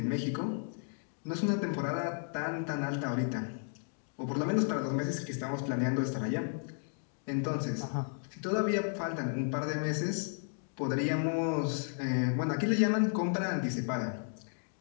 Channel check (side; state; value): right; silent; 55 dB below the other